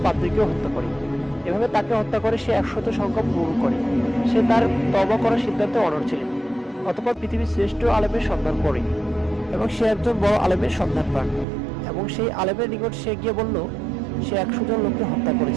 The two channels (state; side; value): drops out; left; at 11.5 s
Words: পাদ্রীকেও হত্যা করে। এভাবে তাকে হত্যা করে সে 100 সংখ্যা পূরণ করে। সে তার তওবা করার সিদ্ধান্তে অনড় ছিলেন। অতঃপর পৃথিবীর শ্রেষ্ঠ আলেমের সন্ধান করে এবং সে একজন বড় আলেমের সন্ধান পান এবং সেই আলেমের নিকট সে গিয়ে বলল সে 100 জন লোককে হত্যা